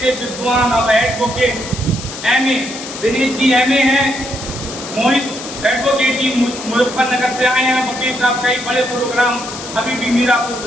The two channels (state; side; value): noise; left; hiss, 11 dB below the sound